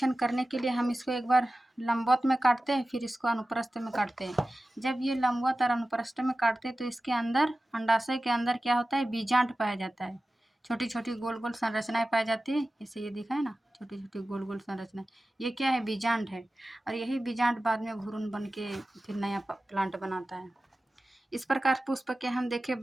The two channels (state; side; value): normal; both; correlation 0.95